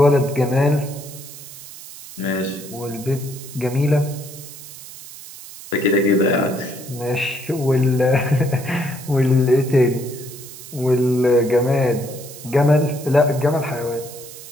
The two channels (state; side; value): noise; right; hiss, 15 dB below the sound